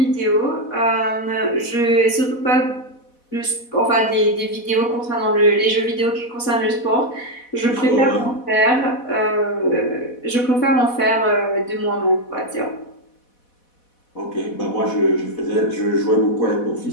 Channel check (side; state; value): right; late; 4.1 ms